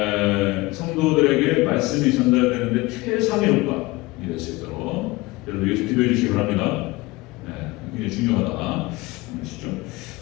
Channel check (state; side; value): quieter; right; 21.4 dB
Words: 성도들에게 말씀이 전달되는데 최상의 효과가 될 수 있도록 여러분 위해서 기도해 주시기 바랍니다. 굉장히 중요하다.